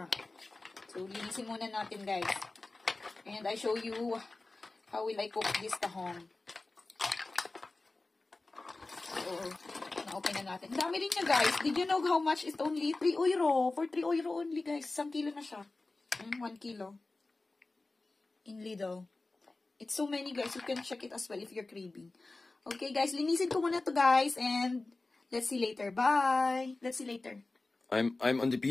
So, linisin muna natin, guys. And I show you how will I cook this tahong. So, na-open na natin. Dami rin niya, guys. Did you know how much is only 3 euro? For 3 euro only, guys. 1 kilo na siya. 1 kilo. In Lidl. It's so many, guys. You can check it as well if you're craving. Okay, guys. Linisin ko muna to, guys. And let's see later. Bye. Let's see later. I'm on the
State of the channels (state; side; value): quieter; right; 3.3 dB